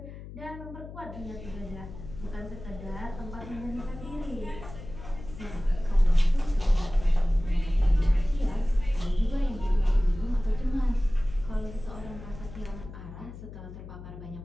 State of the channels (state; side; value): noise; left; hum, 13 dB below the sound